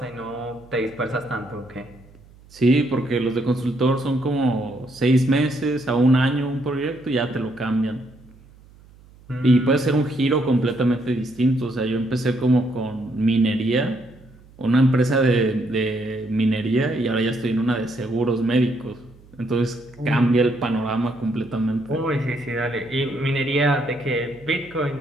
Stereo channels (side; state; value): right; noise; hum, 25 dB below the sound